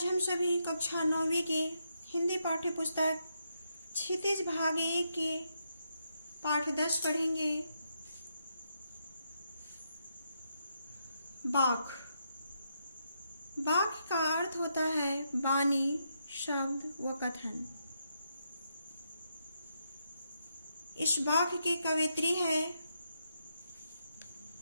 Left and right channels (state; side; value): inverted; both; correlation -0.80